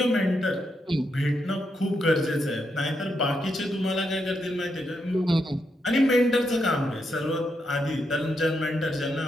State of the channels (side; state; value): both; normal; correlation 0.81